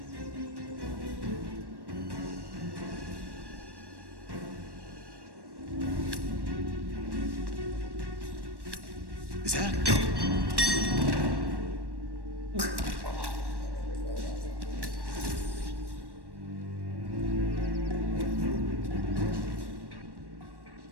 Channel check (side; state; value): left; late; 1.1 ms